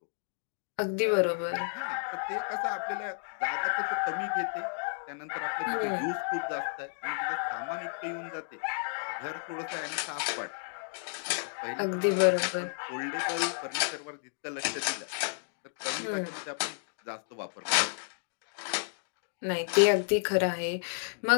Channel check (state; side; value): silent; right; digital silence